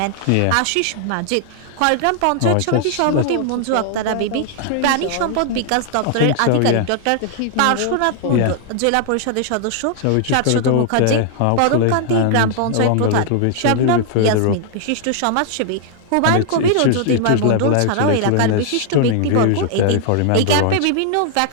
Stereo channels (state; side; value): different; both; correlation 0.00